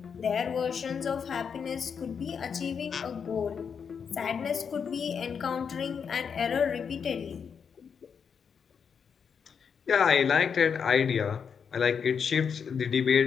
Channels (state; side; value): quieter; right; 6.7 dB